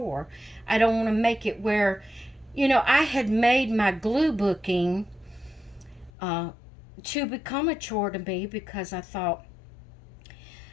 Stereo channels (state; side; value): drops out; right; at 6.1 s